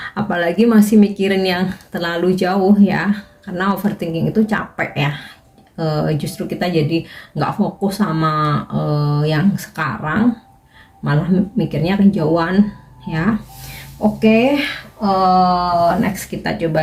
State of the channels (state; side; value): identical; both; correlation 1.00